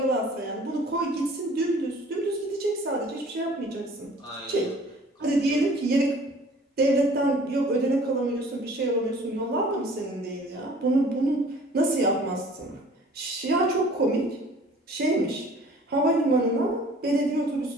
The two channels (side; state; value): both; normal; correlation 0.50